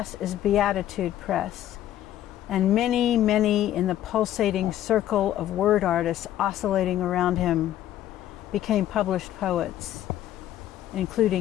is Beatitude Press, and many, many in the pulsating circle of word artists oscillating around him became published poets,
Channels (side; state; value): right; quieter; 12.4 dB